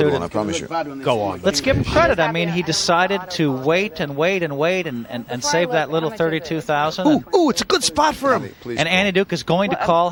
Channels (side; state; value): both; identical; correlation 1.00